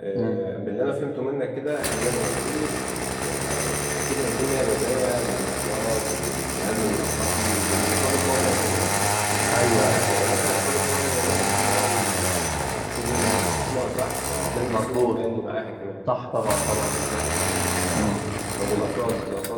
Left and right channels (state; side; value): identical; both; correlation 1.00